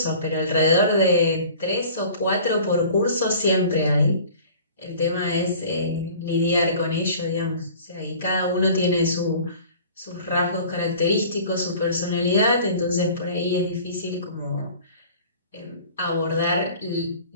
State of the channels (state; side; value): inverted; both; correlation -0.46